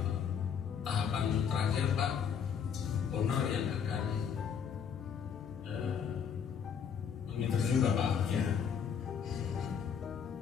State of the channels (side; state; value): right; quieter; 7.3 dB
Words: tahapan terakhir Pak, owner yang akan menginterview Bapak. Ya.